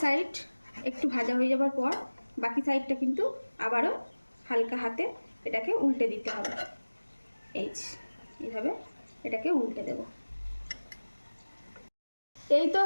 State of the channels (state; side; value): inverted; both; correlation -1.00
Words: সাইড একটু ভাজা হয়ে যাওয়ার পর বাকি সাইডটা কিন্তু আবারও হালকা হাতে এটাকে উল্টে দিতে হবে। এইভাবে এটাকে উল্টে দেব। এই তো